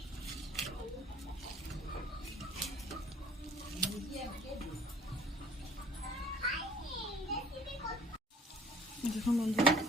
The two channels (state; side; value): normal; both; correlation 0.51